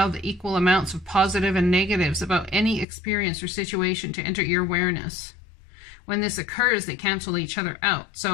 the equal amounts of positive and negatives about any experience or situation to enter your awareness. When this occurs, they cancel each other out.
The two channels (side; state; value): right; drops out; at 2.9 s